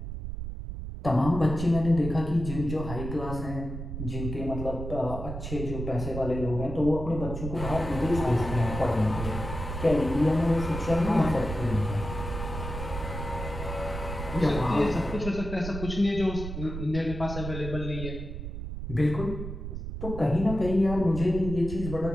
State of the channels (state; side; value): noise; right; rumble, 7 dB below the sound